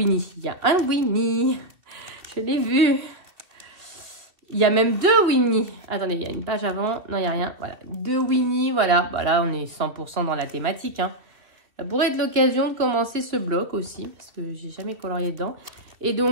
Il y a un Winnie. Je l'ai vu. Il y a même 2 Winnie. Attendez, il y a une page avant. Non, il n'y a rien. Voilà, 2 Winnie. Voilà, voilà, on est 100% dans la thématique. Hein. Ça pourrait être l'occasion de commencer ce bloc aussi parce que j'ai jamais colorié dedans. Et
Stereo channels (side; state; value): left; late; 2.5 ms